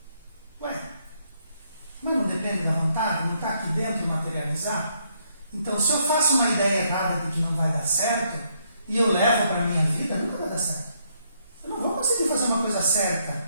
Ué, mas não depende da vontade? Não está aqui dentro de materializar? Então, se eu faço uma ideia errada de que não vai dar certo, e eu levo para a minha vida, nunca vai dar certo. Eu não vou conseguir fazer uma coisa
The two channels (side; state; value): both; inverted; correlation -0.73